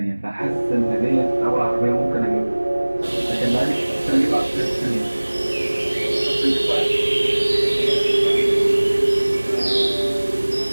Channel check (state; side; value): inverted; both; correlation -1.00